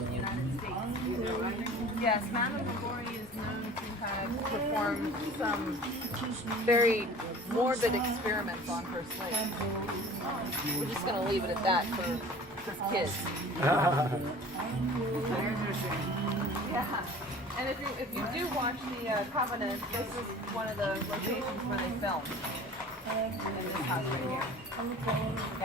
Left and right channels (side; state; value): both; normal; correlation 0.43